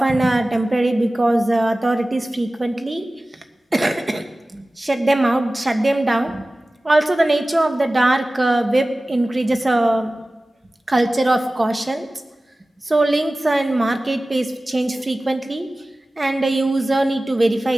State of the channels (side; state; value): both; normal; correlation 0.97